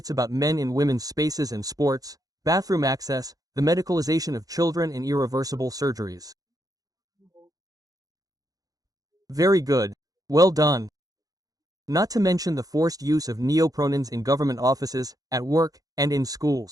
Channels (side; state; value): left; late; 0.18 ms